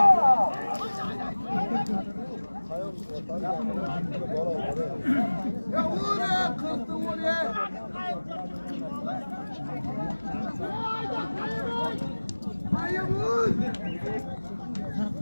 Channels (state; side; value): inverted; both; correlation -1.00